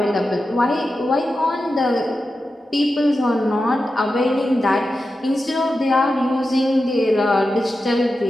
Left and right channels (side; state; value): both; normal; correlation 0.91